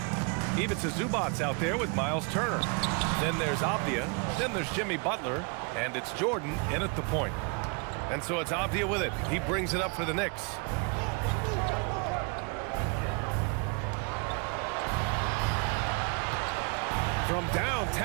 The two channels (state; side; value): quieter; left; 33.5 dB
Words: Ivica Zubac's out there with Miles Turner. Then there's Avdia. Then there's Jimmy Butler. And it's Jordan in at the point. And so it's Avdia with it. He brings it up for the Knicks. From